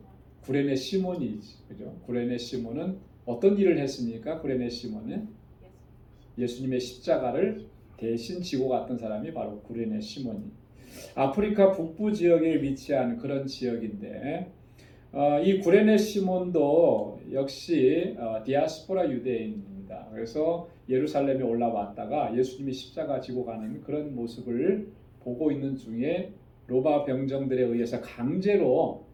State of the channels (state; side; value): identical; both; correlation 1.00